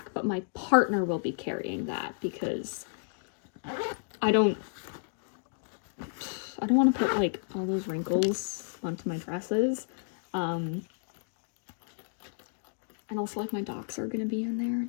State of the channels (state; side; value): silent; right; digital silence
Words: but my partner will be carrying that because I don't want to put like all those wrinkles onto my dresses. And also like my docs are gonna be in there.